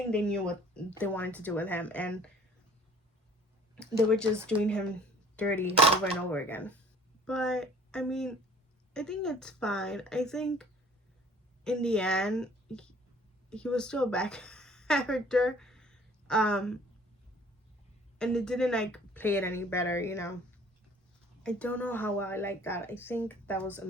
they knew what they wanted to do with him, and they were just doing him dirty over and over again. But I mean, I think it's fine. I think in the end, he was still a bad character, and it didn't like play it any better, you know. I don't know how well I like that. I think that was a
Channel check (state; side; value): normal; both; correlation 0.52